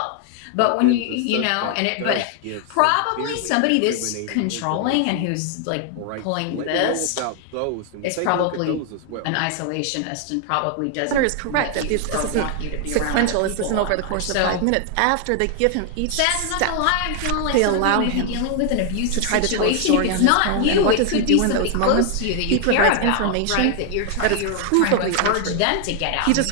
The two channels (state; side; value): different; both; correlation 0.00